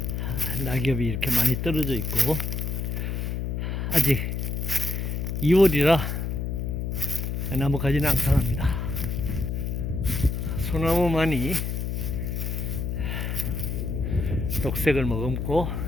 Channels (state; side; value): noise; left; hum, 2 dB below the sound